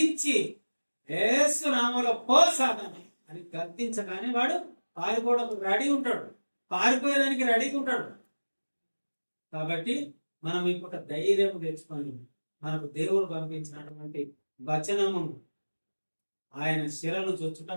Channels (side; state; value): both; inverted; correlation -1.00